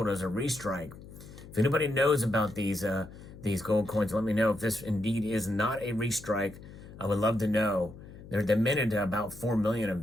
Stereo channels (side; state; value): left; noise; hum, 17 dB below the sound